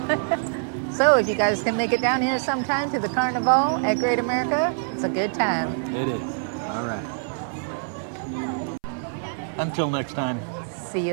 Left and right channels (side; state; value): left; silent; 62 dB below the other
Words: So if you guys can make it down here sometime to the Carnivale at Great America, it's a good time. It is. All right. Until next time. See